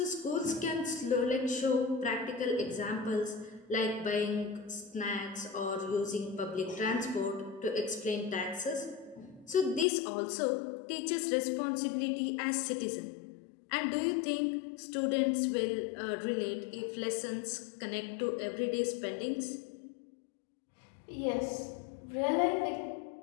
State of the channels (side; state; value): right; drops out; at 9.9 s